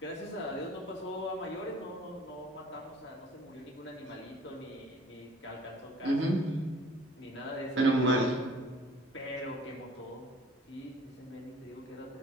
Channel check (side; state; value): both; normal; correlation 0.52